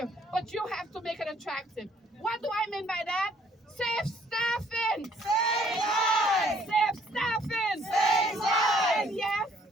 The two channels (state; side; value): normal; both; correlation 0.63